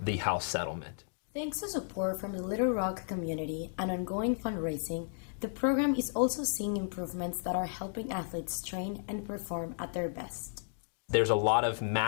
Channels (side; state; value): right; silent; digital silence